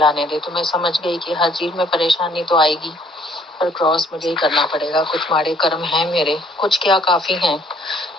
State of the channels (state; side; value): normal; both; correlation 0.62